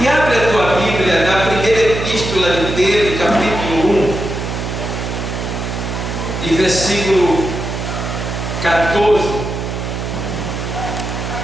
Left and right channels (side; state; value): right; noise; hum, 5 dB below the sound